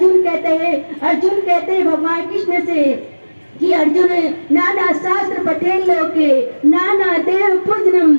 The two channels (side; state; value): both; inverted; correlation -1.00